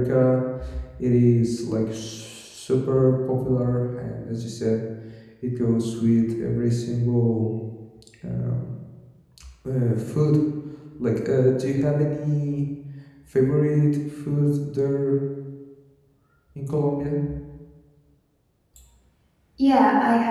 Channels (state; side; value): identical; both; correlation 1.00